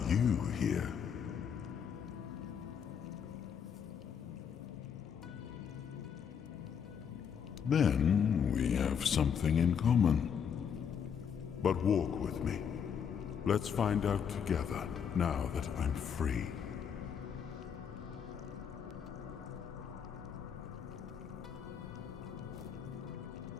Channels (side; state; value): right; quieter; 7.5 dB